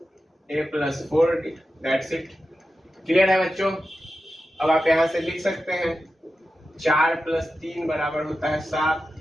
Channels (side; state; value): both; normal; correlation 0.91